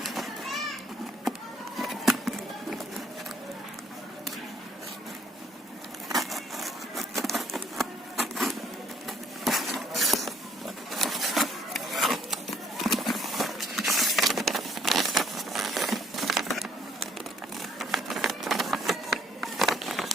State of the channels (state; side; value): normal; both; correlation 0.64